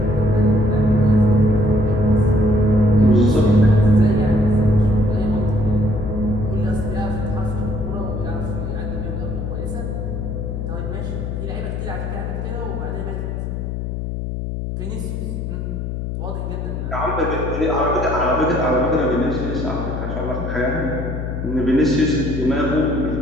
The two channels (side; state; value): left; noise; hum, 4 dB below the sound